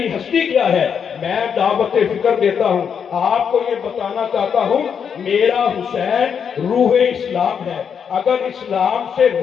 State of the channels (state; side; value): quieter; right; 7.2 dB